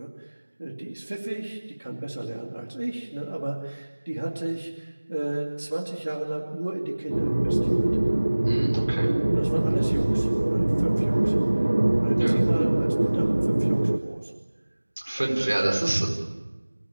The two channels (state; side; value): inverted; both; correlation -1.00